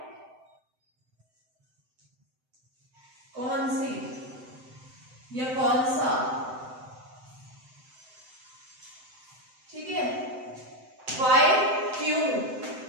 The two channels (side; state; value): left; late; 7.8 ms